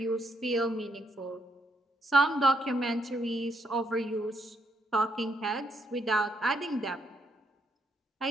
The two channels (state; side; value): normal; both; correlation 0.75